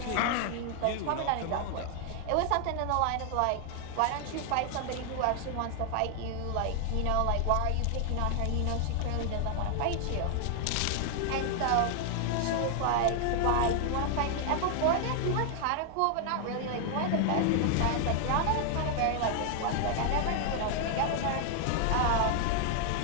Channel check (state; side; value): different; both; correlation 0.00